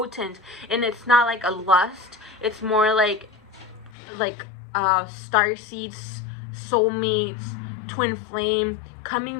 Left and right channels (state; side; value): drops out; right; at 3.9 s